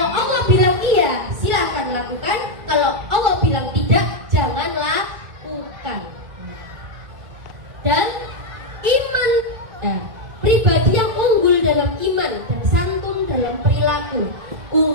Allah bilang iya, silakan lakukan. Kalau Allah bilang tidak, jangan lakukan. Dan iman, pribadi yang unggul dalam iman dan santun dalam perilaku.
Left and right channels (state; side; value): late; left; 2.3 ms